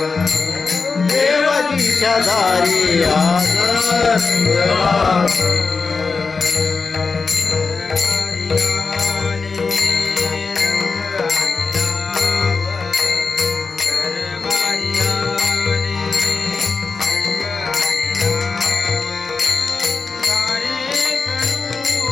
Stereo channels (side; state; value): right; quieter; 4.6 dB